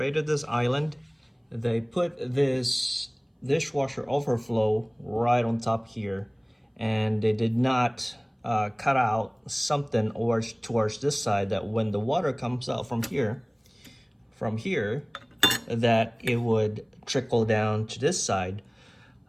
this island, they put this dishwasher overflow right on top here, and they did not cut out something or towards this side that when the water comes out from here, that it would trickle down to this side.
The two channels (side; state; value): both; identical; correlation 1.00